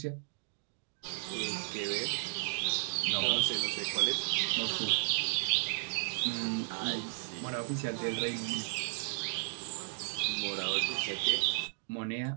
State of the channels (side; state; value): left; silent; digital silence